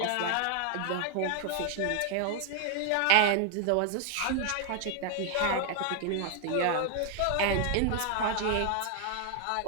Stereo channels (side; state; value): both; different; correlation 0.00